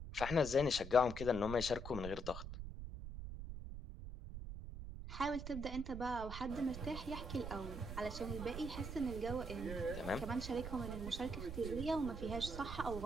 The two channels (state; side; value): noise; right; rumble, 7 dB below the sound